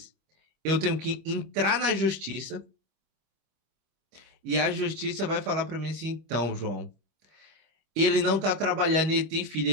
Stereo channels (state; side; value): late; left; 25 ms